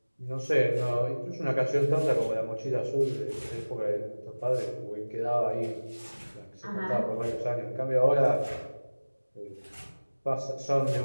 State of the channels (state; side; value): inverted; both; correlation -1.00